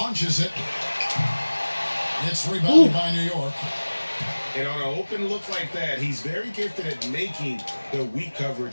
it. It's rebounded by New York. And on an open look like that, he's very gifted at making the weak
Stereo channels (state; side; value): inverted; both; correlation -1.00